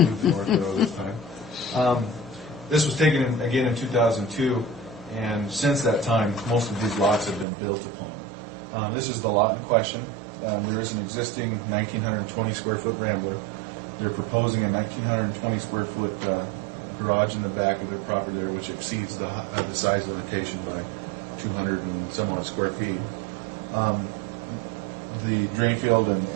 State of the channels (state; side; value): drops out; left; at 7.5 s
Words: north though this time. This was taken again in 2002, and since that time, most of these lots have been built upon. This is the lot in question. There is an existing 1,920 square foot Rambler. They're proposing a 1,920 square foot garage in the back of their property there, which exceeds the size limitation by 200 and some odd square feet. The drain field